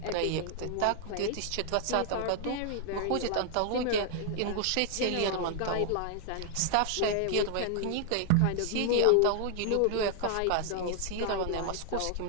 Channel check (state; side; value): different; both; correlation 0.00